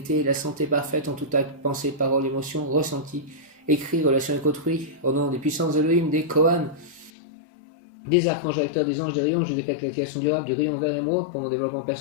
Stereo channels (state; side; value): drops out; right; at 7.1 s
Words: la santé parfaite en tout acte, pensée, parole, émotion, ressenti, écrit, relation avec autrui, au nom des puissances Elohim, des Kohan, des archanges acteurs, des anges, des rayons, je décrète la création durable du rayon vert émeraude pour mon développement